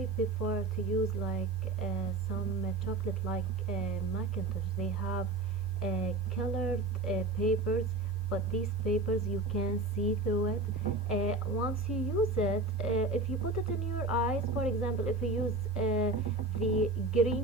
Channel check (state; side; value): quieter; left; 3.1 dB